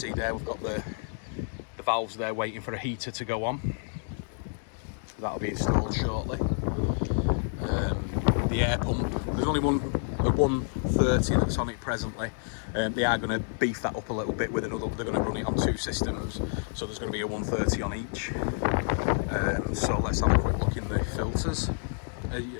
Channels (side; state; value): right; silent; 59 dB below the other